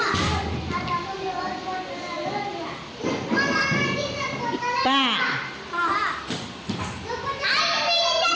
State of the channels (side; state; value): both; identical; correlation 1.00